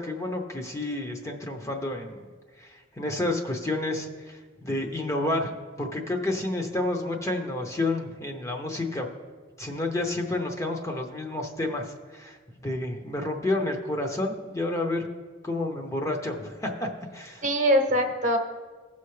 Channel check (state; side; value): normal; both; correlation 0.43